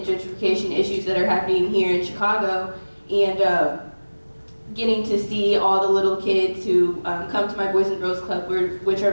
gentrification issues that are happening here in Chicago, and getting to see all the little kids who come to my Boys and Girls Club, which are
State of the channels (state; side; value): inverted; both; correlation -1.00